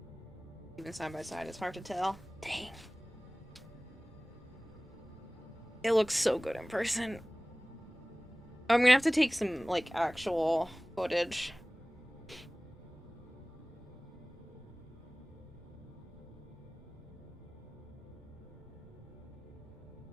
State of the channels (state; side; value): noise; right; rumble, 24 dB below the sound